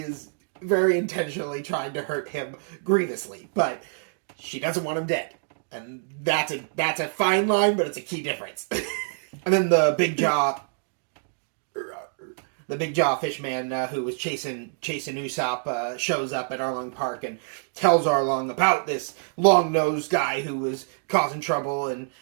is very intentionally trying to hurt him grievously, but she doesn't want him dead. And that's a fine line, but it's a key difference. And then the big jaw fishman who was chasing Usopp shows up at Arlong Park and tells Arlong about this long-nosed guy who was causing trouble, and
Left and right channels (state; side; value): silent; left; digital silence